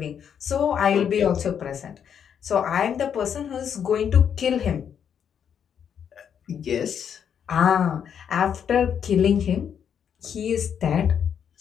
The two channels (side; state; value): right; quieter; 8.1 dB